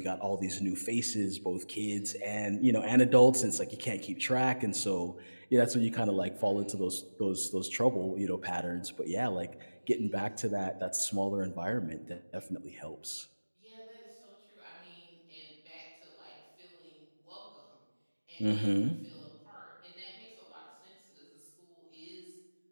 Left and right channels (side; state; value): both; inverted; correlation -1.00